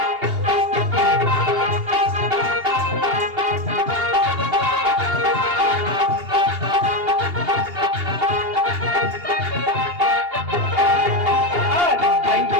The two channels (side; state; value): left; late; 2.8 ms